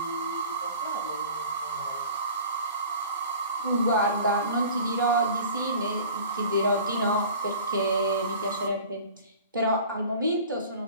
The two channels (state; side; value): inverted; both; correlation -0.42